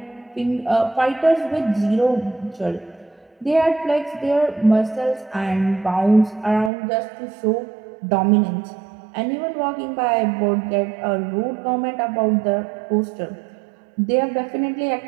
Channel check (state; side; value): drops out; left; at 6.7 s